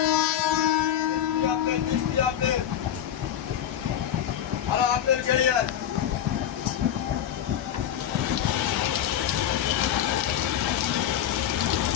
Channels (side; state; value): right; quieter; 10.3 dB